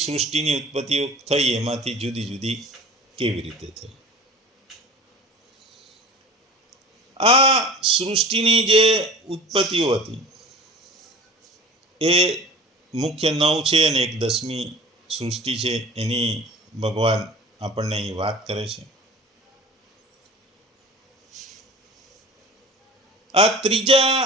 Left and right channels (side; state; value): both; normal; correlation 0.40